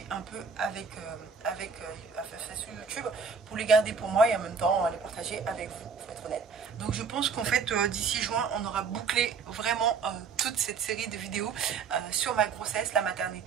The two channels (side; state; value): left; quieter; 5.4 dB